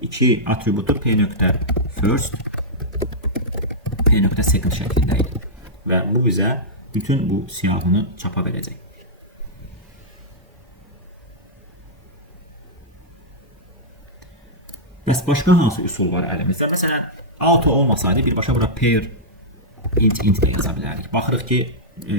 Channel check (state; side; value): normal; both; correlation -0.11